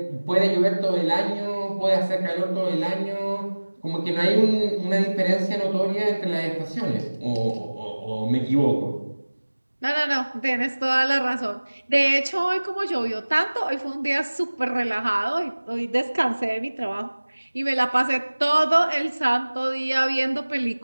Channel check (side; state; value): both; inverted; correlation -1.00